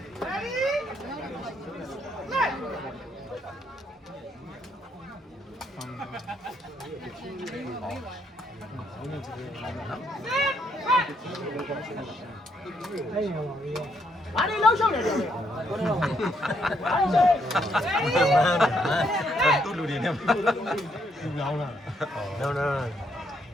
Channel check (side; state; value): both; normal; correlation 0.74